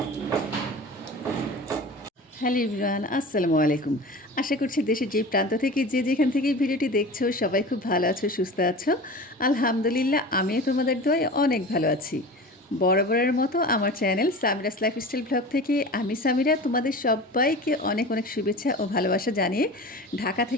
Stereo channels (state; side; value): normal; both; correlation 0.35